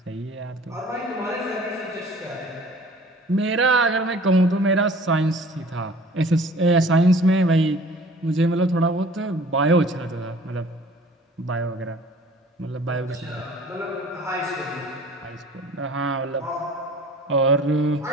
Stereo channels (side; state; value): both; normal; correlation 0.48